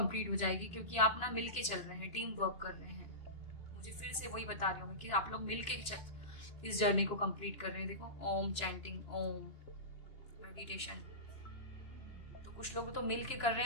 हो जाएगी, क्योंकि आप ना मिल के चल रहे हैं, टीम वर्क कर रहे हैं। मुझे फिर से वही बता रही हूँ कि आप लोग मिल के इस जर्नी को कंप्लीट कर रहे हैं। देखो ओम चैंटिंग, ओम मेडिटेशन। तो कुछ लोग तो मिल के कर रहे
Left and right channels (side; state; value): right; late; 2.9 ms